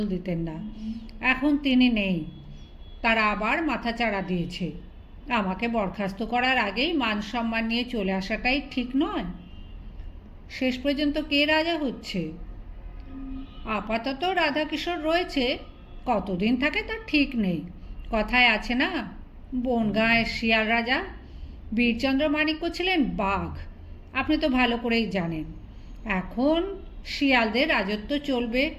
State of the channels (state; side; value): identical; both; correlation 1.00